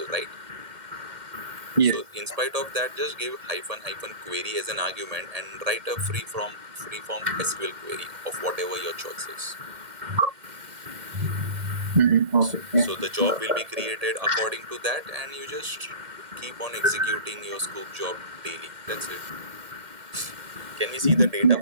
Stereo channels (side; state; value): left; late; 1.7 ms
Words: right? Yes. So in spite of that, just give hyphen query as an argument and write a free-form SQL query of whatever your choice is. Okay. So Yeah. the job will be created according to that, and you just keep on executing your Sqoop job daily. That's it. Can we see the data Yeah.